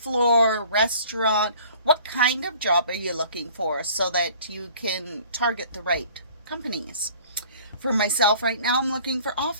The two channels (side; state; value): both; inverted; correlation -0.51